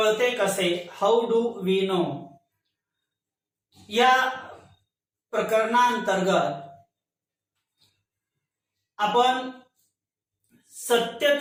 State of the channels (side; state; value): both; identical; correlation 1.00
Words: कसे, हाऊ डू वी नो, या प्रकरणांतर्गत आपण